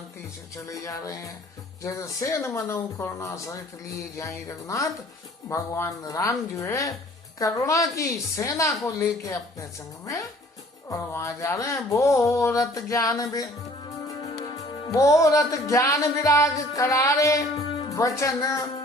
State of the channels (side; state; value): both; normal; correlation 0.53